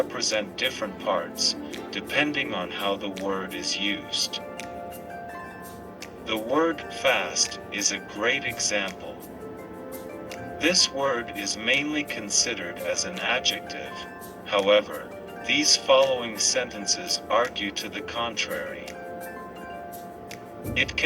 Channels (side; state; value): both; identical; correlation 1.00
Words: different parts, depending on how the word is used. The word fast is a great example. This word is mainly considered as an adjective. However, these following sentences argue to the contrary. It